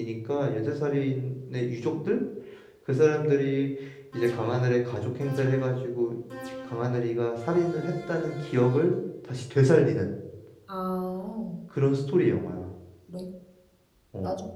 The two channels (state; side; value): identical; both; correlation 1.00